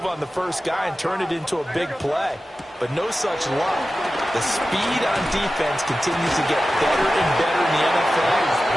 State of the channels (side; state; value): both; normal; correlation 0.94